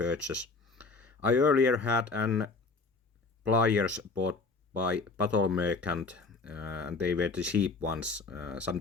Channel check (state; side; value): quieter; right; 4.0 dB